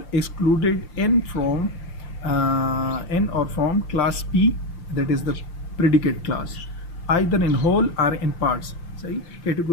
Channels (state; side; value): late; right; 5.8 ms